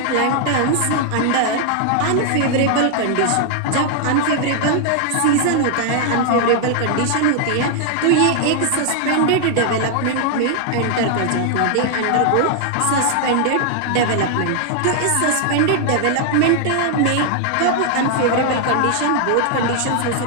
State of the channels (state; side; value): different; both; correlation 0.00